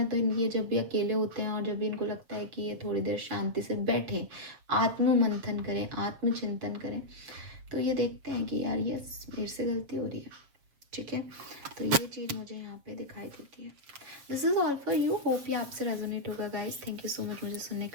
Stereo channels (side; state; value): left; late; 7.3 ms